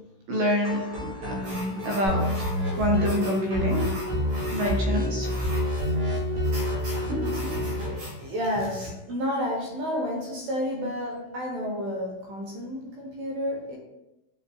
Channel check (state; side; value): late; left; 16 ms